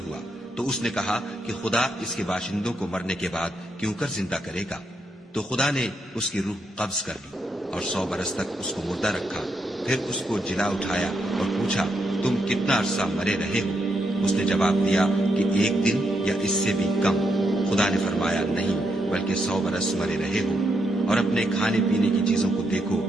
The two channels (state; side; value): normal; both; correlation 0.80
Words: ہوا، تو اس نے کہا کہ خدا اس کے باشندوں کو مرنے کے بعد کیوں کر زندہ کرے گا؟ تو خدا نے اس کی روح قبض کر لی اور 100 برس تک اس کو مردہ رکھا۔ پھر اس کو جلا اٹھایا اور پوچھا، تم کتنا عرصہ مرے رہے ہو؟ اس نے جواب دیا کہ 1 دن یا اس سے بھی کم۔ خدا نے فرمایا، نہیں بلکہ 100 برس مرے رہے ہو، اور اپنے کھانے پینے کی چیزوں کو دیکھو